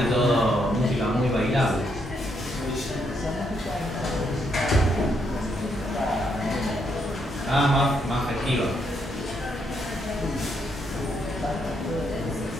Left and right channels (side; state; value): both; normal; correlation 0.76